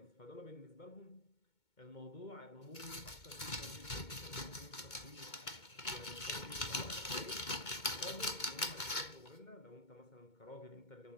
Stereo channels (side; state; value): right; late; 2.2 ms